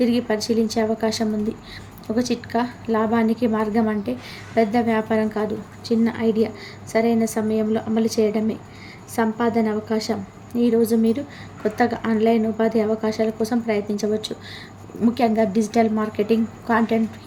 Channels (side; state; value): both; identical; correlation 1.00